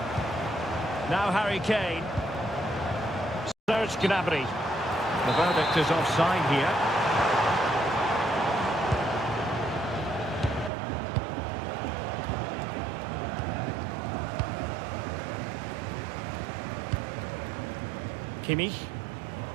Now Harry Kane. Serge Gnabry. The verdict is offside here. Kimmich.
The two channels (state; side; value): drops out; left; at 10.7 s